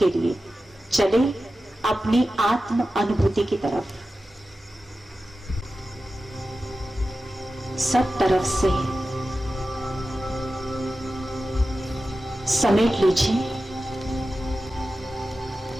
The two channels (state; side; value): normal; both; correlation 0.93